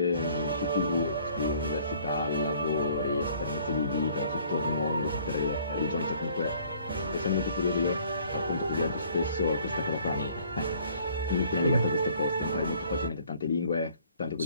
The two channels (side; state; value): both; inverted; correlation -0.58